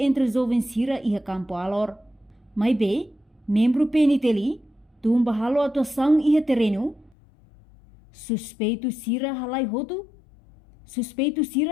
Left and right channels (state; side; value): drops out; right; at 7.1 s